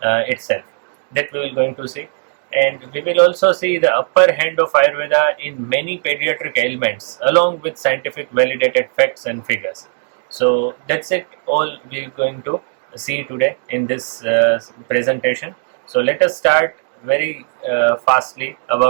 itself. That we will going to see, and we will also see the upper hand of Ayurveda in many pediatric ailments along with scientific validated facts and figures. So that's it all we are going to see today in this presentation. So let us start very fastly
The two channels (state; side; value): silent; left; 67 dB below the other